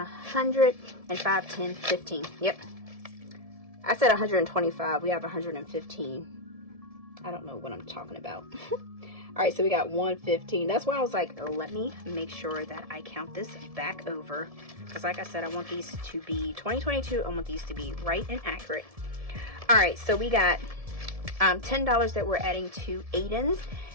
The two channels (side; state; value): left; late; 1.7 ms